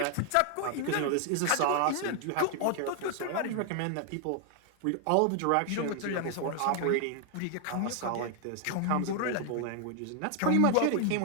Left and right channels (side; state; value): both; different; correlation 0.00